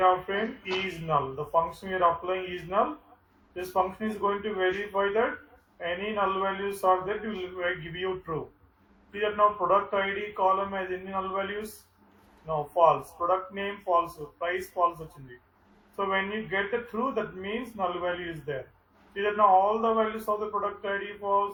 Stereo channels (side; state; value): both; identical; correlation 1.00